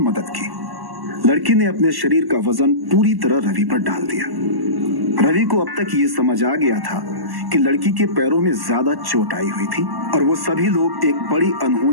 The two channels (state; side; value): late; left; 1.1 ms